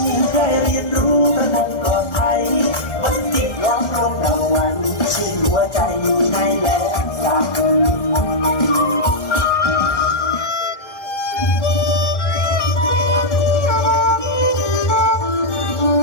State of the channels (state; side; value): late; right; 1.4 ms